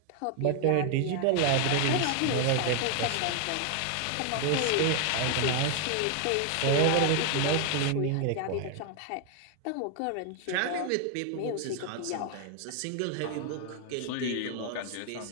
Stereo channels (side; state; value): both; different; correlation 0.00